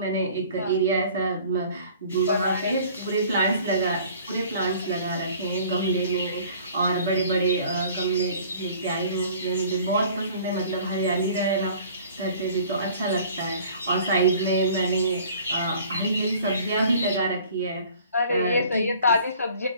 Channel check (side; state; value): both; inverted; correlation -0.51